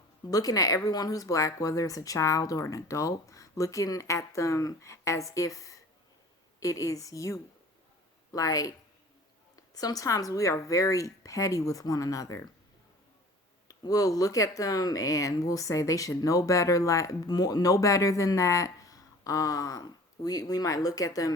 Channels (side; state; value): both; normal; correlation 0.45